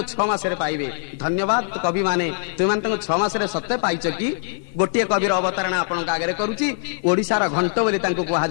6 मासरे पाइबे। धन्यवाद कवि माने, तुम माने तांको 6 मासरे सत्य पाइछ कि? गोटिए कविर अवतारणा आपनका आगरे करूची। ओडिसार घंट बोली तांको कुहा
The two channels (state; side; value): silent; right; digital silence